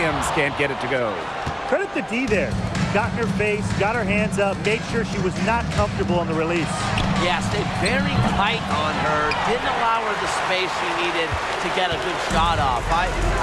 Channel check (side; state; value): both; identical; correlation 1.00